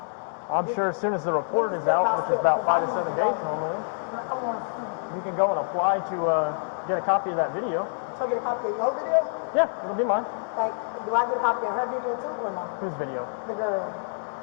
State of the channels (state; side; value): silent; right; digital silence